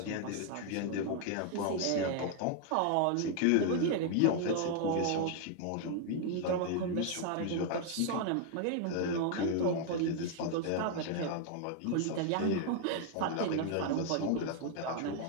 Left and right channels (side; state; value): both; different; correlation 0.00